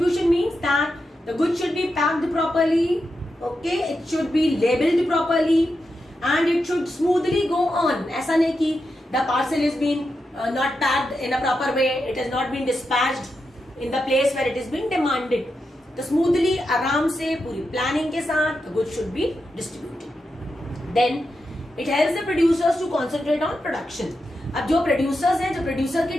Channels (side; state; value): both; normal; correlation 0.87